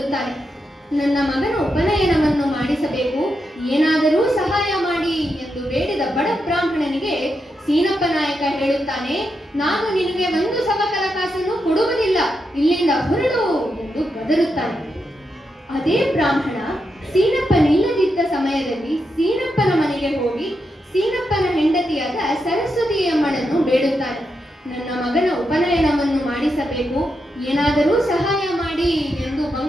ನನ್ನ ಮಗನ ಉಪನಯನವನ್ನು ಮಾಡಿಸಬೇಕು, ಏನಾದರೂ ಸಹಾಯ ಮಾಡಿ ಎಂದು ಬೇಡಿದ ಬಡ ಬ್ರಾಹ್ಮಣನಿಗೆ ಸೀನಪ್ಪ ನಾಯಕ ಹೇಳುತ್ತಾನೆ, ನಾನು ನಿನಗೆ 1 ಸವಕಲ ಕಾಸನ್ನು ಕೊಡುವುದಿಲ್ಲ, ಇಲ್ಲಿಂದ ಹೊರಡು ಎಂದು ಗದರುತ್ತಾನೆ. ಅದೇ ಬ್ರಾಹ್ಮಣ ಸೀನಪ್ಪನಿಲ್ಲದಿದ್ದ ಸಮಯದಲ್ಲಿ ಸೀನಪ್ಪನ ಮನೆಗೆ ಹೋಗಿ ಸೀನಪ್ಪನ ಹೆಂಡತಿಯಾದ ಸರಸ್ವತಿ ಅಮ್ಮನನ್ನು ಬೇಡುತ್ತಾನೆ. ನನ್ನ ಮಗನ ಉಪನಯನವನ್ನು ಮಾಡಿಸಬೇಕು, ಏನಾದರೂ ಸಹಾಯ ಮಾಡಿ ಎಂದು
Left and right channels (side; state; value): both; normal; correlation 0.85